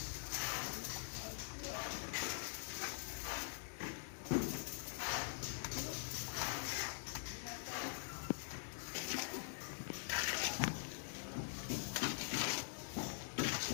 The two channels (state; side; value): silent; right; digital silence